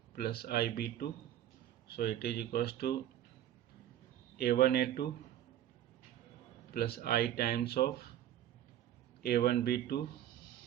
plus IB2, so it is equals to A1A2 plus I times of A1B2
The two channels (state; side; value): quieter; left; 11.8 dB